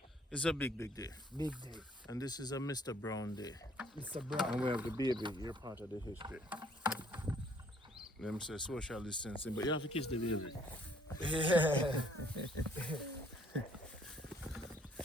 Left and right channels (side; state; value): both; normal; correlation 0.62